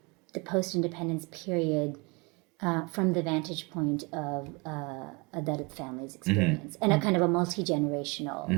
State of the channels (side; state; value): left; quieter; 28.0 dB